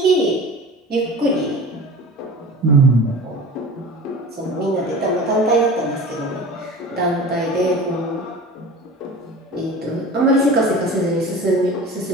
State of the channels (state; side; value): normal; both; correlation 0.37